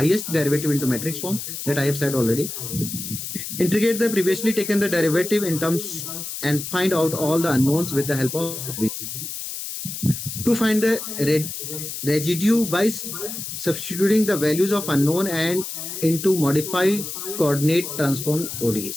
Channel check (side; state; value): left; noise; hiss, 7 dB below the sound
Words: derivative into matrix form that I have said already. Integrate the previously taken the derivative in terms and find out all the unknowns with the help of this. To find the residue by substituting the values of unknown and into modified coordinate transform